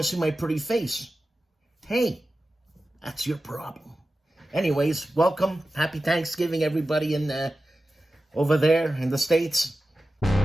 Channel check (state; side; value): normal; both; correlation 0.94